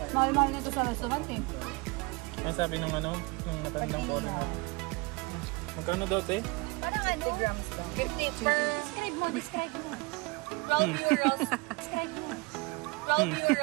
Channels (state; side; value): quieter; left; 26.7 dB